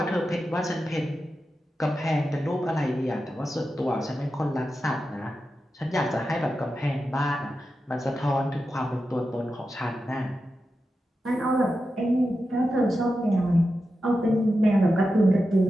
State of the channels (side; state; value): both; normal; correlation 0.90